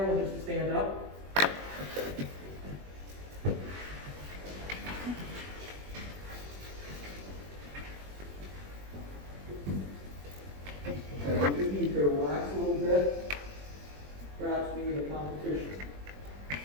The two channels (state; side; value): late; left; 21 ms